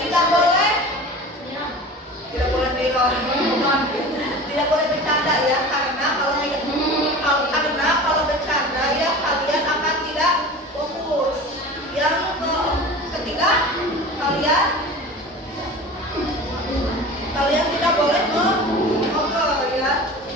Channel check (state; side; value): normal; both; correlation 0.36